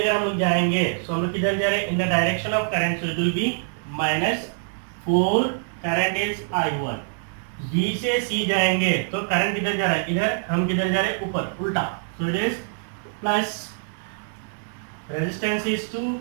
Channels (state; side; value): silent; left; 62 dB below the other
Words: हम लोग जाएंगे तो हम लोग किधर जा रहे हैं, in the direction of current, so it will be -4, current is I1। B से सी जाएंगे तो करंट किधर जा रहा है, इधर, हम किधर जा रहे हैं, ऊपर, उल्टा, सो it is plus, resistance is 2,